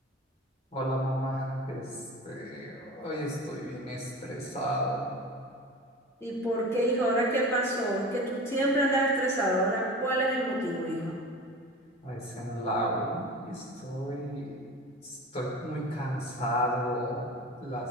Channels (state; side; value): normal; both; correlation 0.34